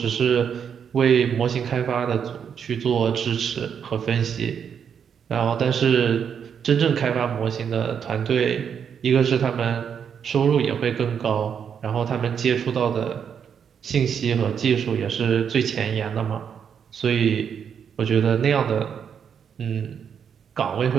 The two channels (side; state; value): left; quieter; 7.6 dB